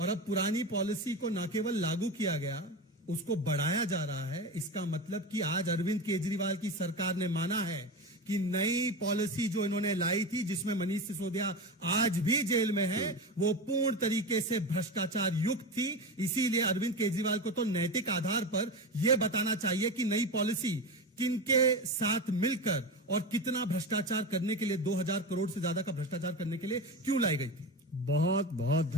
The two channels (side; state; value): both; normal; correlation 0.22